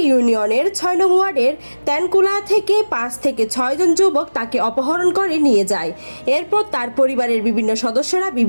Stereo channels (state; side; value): inverted; both; correlation -1.00